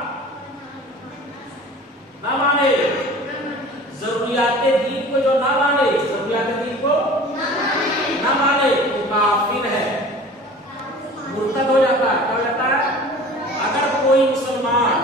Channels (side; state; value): both; normal; correlation 0.42